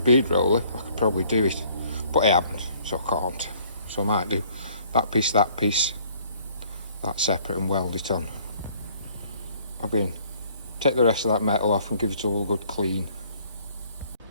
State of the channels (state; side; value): inverted; both; correlation -0.59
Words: roller, I could probably do it, but I haven't, so I can't. So I might do that piece, that separate, and weld it on. Take the rest of that metal off and give it all a good clean.